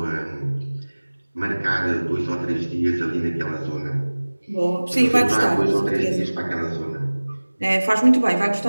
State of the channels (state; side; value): inverted; both; correlation -1.00